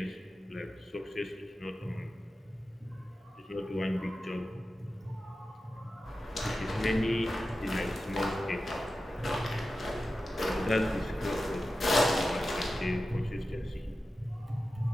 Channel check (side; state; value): both; normal; correlation 0.93